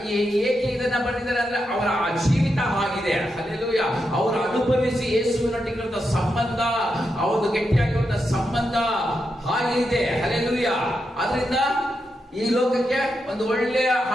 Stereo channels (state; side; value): normal; both; correlation 0.85